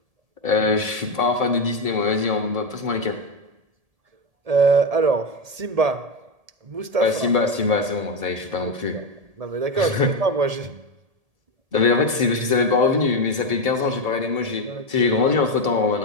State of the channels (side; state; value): left; late; 1.7 ms